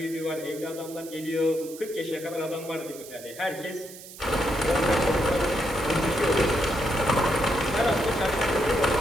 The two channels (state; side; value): noise; right; hiss, 16 dB below the sound